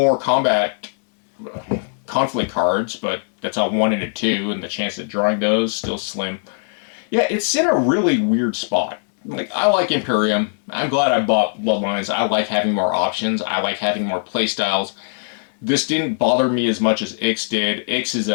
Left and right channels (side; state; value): right; silent; 64 dB below the other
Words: combat conflict cards, but that's a 1 and a 2, and the chance of drawing those still slim. Yeah, it's in a really weird spot. Like, I like Imperium. I'm glad I bought Bloodlines. I like having more options. I like having more playstyles. This didn't bother me as much as Ix did. Ix is